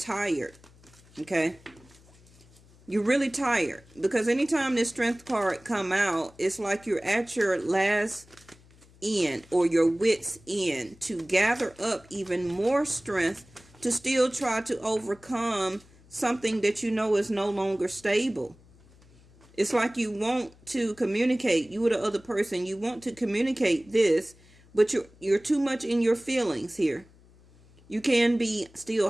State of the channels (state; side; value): noise; left; hum, 26 dB below the sound